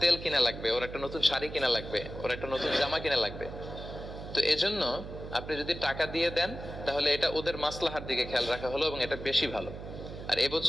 তেল কিনা লাগবে, ওর একটা নতুন শাড়ি কিনা লাগবে, ওর একটা নতুন জামা কিনা লাগবে। তো এজন্য আপনি যদি টাকা দিয়ে দেন তাহলে এটা ওদের মাসলাহার দিকে খেয়াল রাখা হলো এবং এটা বেশি ভালো। আর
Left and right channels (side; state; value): right; noise; hum, 10 dB below the sound